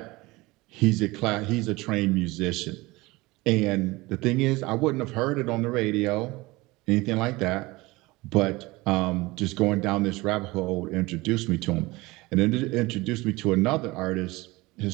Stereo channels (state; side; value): quieter; left; 21.7 dB